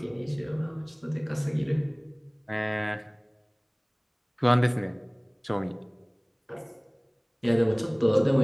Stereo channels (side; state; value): both; identical; correlation 1.00